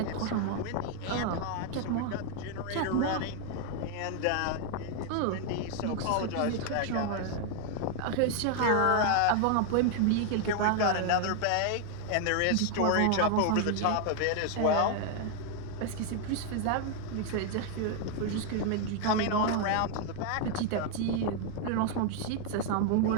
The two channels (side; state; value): both; different; correlation 0.00